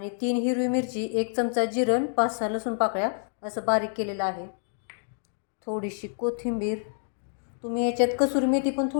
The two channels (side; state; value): right; silent; digital silence